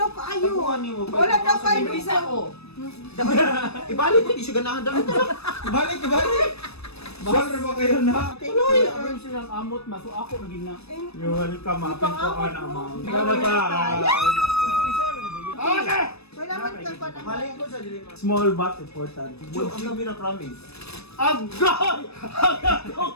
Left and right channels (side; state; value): right; late; 0.78 ms